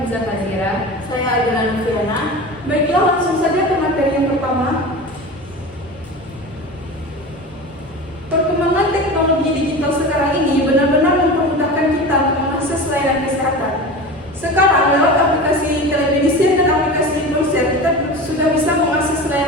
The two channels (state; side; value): normal; both; correlation 0.31